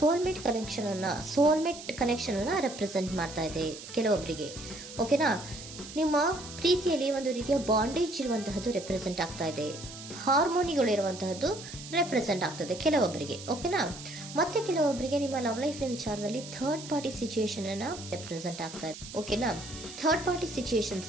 ಕನೆಕ್ಷನ್ ಅನ್ನ ರೆಪ್ರೆಸೆಂಟ್ ಮಾಡ್ತಾ ಇದೆ ಕೆಲವೊಬ್ಬರಿಗೆ. ಓಕೆನಾ? ನಿಮ್ಮ ಪ್ರೀತಿಯಲ್ಲಿ ಒಂದು ರೀತಿಯ ಬಾಂಡೇಜ್ ಇರುವಂತಹದ್ದು ರೆಪ್ರೆಸೆಂಟ್ ಆಗ್ತಾ ಇದೆ. ಹಾರ್ಮೋನಿಗಳು ಇರುವಂತಹದ್ದು ರೆಪ್ರೆಸೆಂಟ್ ಆಗ್ತದೆ ಕೆಲವೊಬ್ಬರಿಗೆ. ಓಕೆನಾ? ಮತ್ತೆ ಕೆಲವೊಬ್ಬರಿಗೆ ನಿಮ್ಮ ಲವ್ ಲೈಫ್ ನ ವಿಚಾರದಲ್ಲಿ ಥರ್ಡ್ ಪಾರ್ಟಿ ಸಿಚುಯೇಷನ್ ಅನ್ನ ರೆಪ್ರೆಸೆಂಟ್ ಆಗ್ತಾ ಇದೆ. ಓಕೆನಾ? ಥರ್ಡ್ ಪಾರ್ಟಿ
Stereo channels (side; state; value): right; noise; hiss, 13 dB below the sound